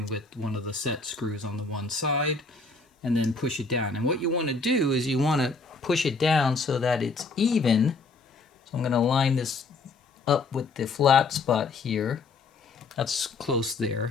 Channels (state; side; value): quieter; right; 3.9 dB